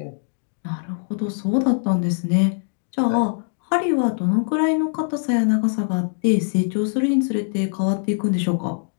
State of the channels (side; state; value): right; silent; digital silence